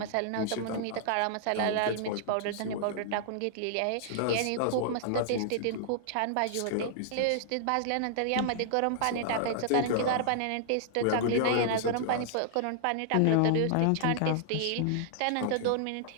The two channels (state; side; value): different; both; correlation -0.01